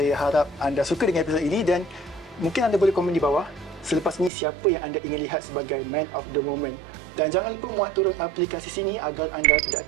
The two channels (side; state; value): left; drops out; at 4.3 s